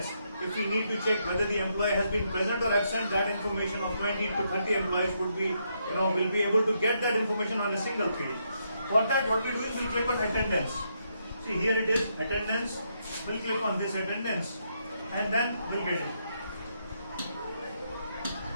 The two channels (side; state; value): both; inverted; correlation -0.78